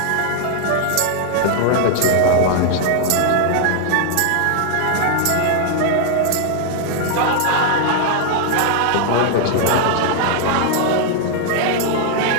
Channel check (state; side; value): different; both; correlation 0.00